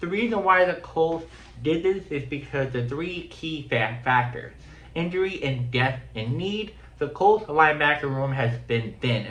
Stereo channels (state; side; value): identical; both; correlation 1.00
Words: the reason why the Colts did this is because the three key factors: injury and death and need. The Colts linebacker room has been thin,